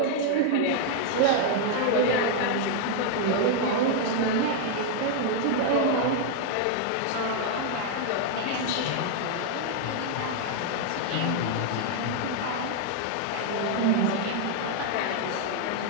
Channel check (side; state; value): both; different; correlation 0.00